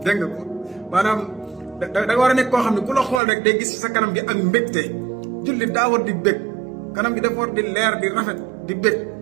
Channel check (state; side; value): drops out; left; at 3.2 s